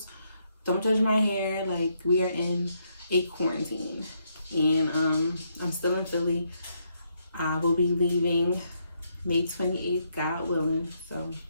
don't judge my hair. Like, we are in a quarantine. And I'm still in Philly. I will be leaving May 28th, God willing. So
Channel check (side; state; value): both; inverted; correlation -0.76